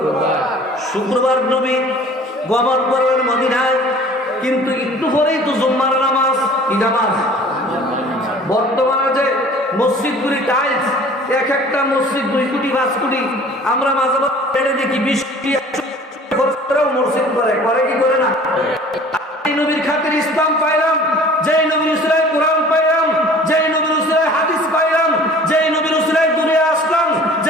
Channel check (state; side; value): normal; both; correlation 0.48